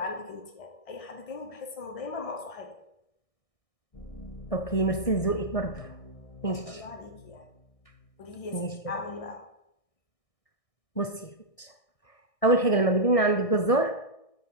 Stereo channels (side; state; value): right; late; 1.6 ms